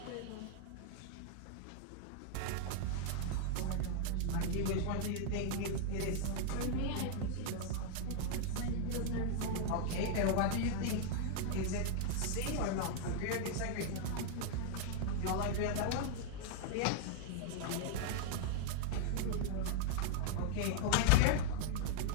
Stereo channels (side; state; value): both; different; correlation 0.00